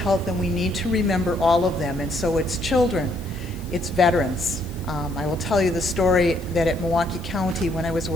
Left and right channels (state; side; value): noise; left; hiss, 22 dB below the sound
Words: and we need to remember all of them. And so it's children, it's veterans. I will tell you the story that at Milwaukee County, when I was